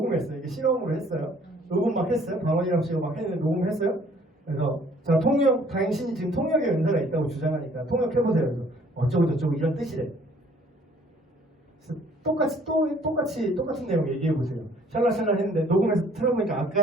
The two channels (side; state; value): both; normal; correlation 0.58